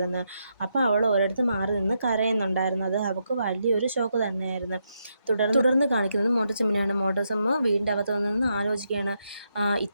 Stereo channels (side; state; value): both; inverted; correlation -0.81